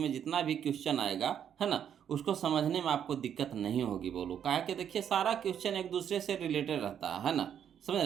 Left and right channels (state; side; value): quieter; left; 9.0 dB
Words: जितना भी क्वेश्चन आएगा, है ना, उसको समझने में आपको दिक्कत नहीं होगी। बोलो काहे कि देखिए सारा क्वेश्चन एक दूसरे से रिलेटेड रहता है ना, समझ